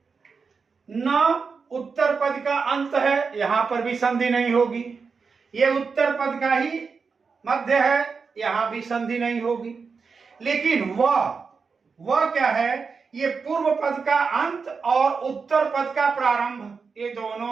न उत्तर पद का अंत है, यहां पर भी संधि नहीं होगी। ये उत्तर पद का ही मध्य है, यहां भी संधि नहीं होगी। लेकिन वह क्या है, ये पूर्व पद का अंत और उत्तर पद का प्रारंभ, ये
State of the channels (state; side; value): quieter; left; 5.2 dB